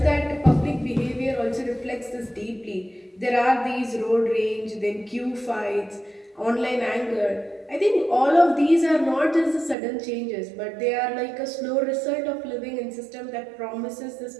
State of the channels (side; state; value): left; drops out; at 9.8 s